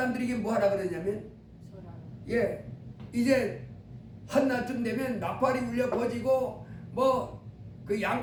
뭐 하라 그러냐면, 예, 이제 한낮쯤 되면 나팔이 울려 퍼지고 뭐 그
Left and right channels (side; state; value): both; identical; correlation 1.00